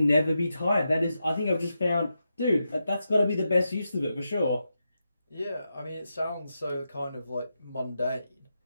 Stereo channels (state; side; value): inverted; both; correlation -0.87